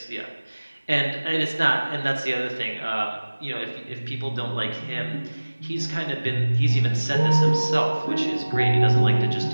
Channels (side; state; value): both; inverted; correlation -1.00